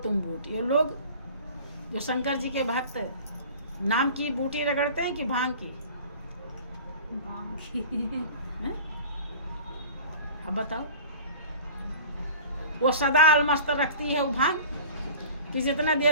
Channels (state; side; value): inverted; both; correlation -0.41